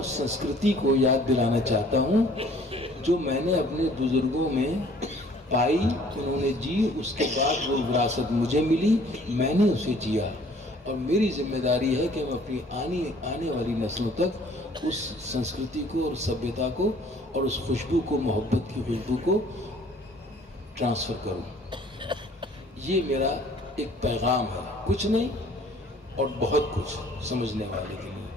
سنسکرتی کو یاد دلانا چاہتا ہوں جو میں نے اپنے بزرگوں میں پائی، انہوں نے جی، اس کے بعد وہ وراثت مجھے ملی، میں نے اسے جیا، اور میری ذمہ داری ہے کہ میں اپنی آنے والی نسلوں تک اس سنسکرتی کو اور سبھیتا کو اور اس خوشبو کو، محبت کی خوشبو کو ٹرانسفر کروں۔ یہ میرا ایک پیغام ہے، کچھ نہیں اور بہت کچھ سمجھنے والے کے لیے۔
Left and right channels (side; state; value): both; normal; correlation 0.55